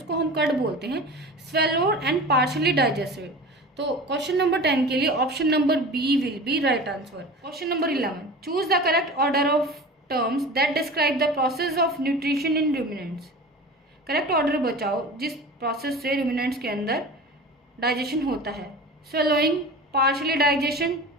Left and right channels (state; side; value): normal; both; correlation 0.35